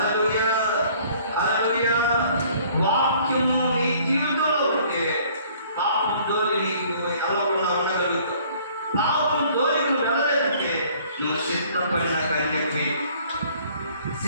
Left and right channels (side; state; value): both; inverted; correlation -0.56